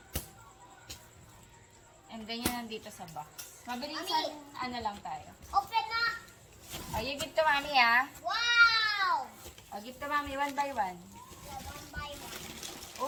And then yun nandito sa box. Mabilisan, Mami. ano lang tayo. Open na. Oh, you give to mommy ah. Wow. Oh, give to mommy one by one. Yeah, one by one.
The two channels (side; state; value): both; identical; correlation 1.00